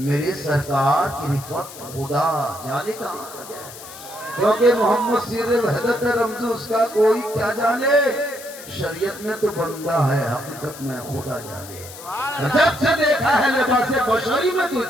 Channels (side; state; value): left; noise; hiss, 15 dB below the sound